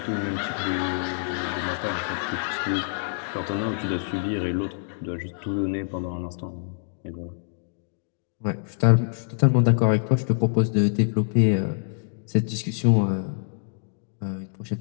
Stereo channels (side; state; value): right; silent; digital silence